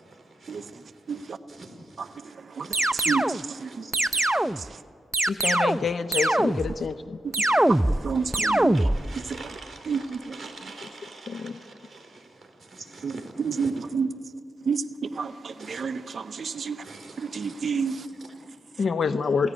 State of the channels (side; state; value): both; normal; correlation 0.86